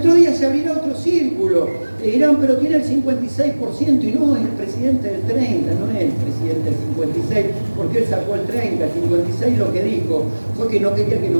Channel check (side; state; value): both; inverted; correlation -1.00